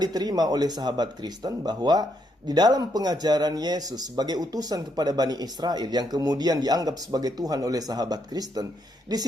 oleh sahabat Kristen, bahwa di dalam pengajaran Yesus sebagai utusan kepada Bani Israel yang kemudian dianggap sebagai Tuhan oleh sahabat Kristen, di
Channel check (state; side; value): normal; both; correlation 0.76